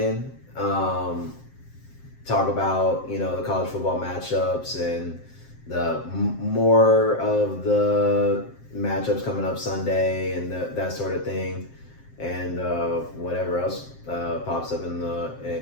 Talk about the college football matchups and the more of the matchups coming up Sunday and that sort of thing, and whatever else pops up in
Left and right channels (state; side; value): late; right; 7.6 ms